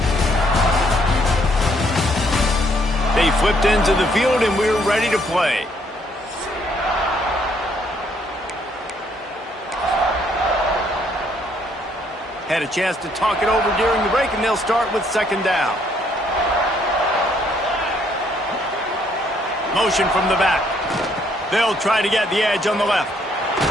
They flipped into the field, and we're ready to play. Had a chance to talk it over during the break, and they'll start with second down. Motion from the back. They'll try to get the edge on the left.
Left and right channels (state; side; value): normal; both; correlation 0.68